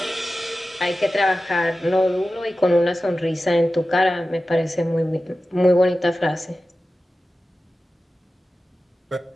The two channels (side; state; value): both; normal; correlation 0.94